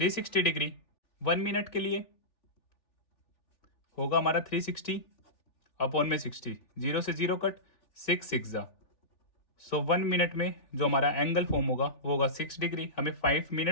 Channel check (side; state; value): right; late; 3.4 ms